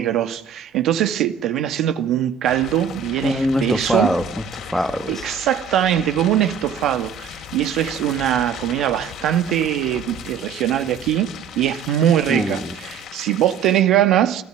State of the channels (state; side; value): quieter; left; 7.7 dB